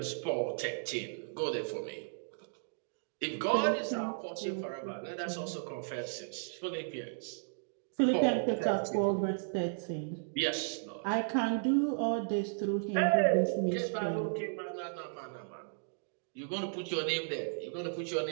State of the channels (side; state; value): left; silent; digital silence